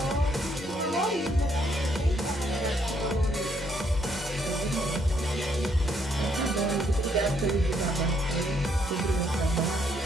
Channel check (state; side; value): normal; both; correlation 0.71